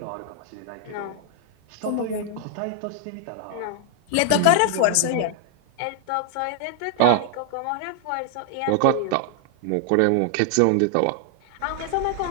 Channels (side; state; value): both; different; correlation 0.00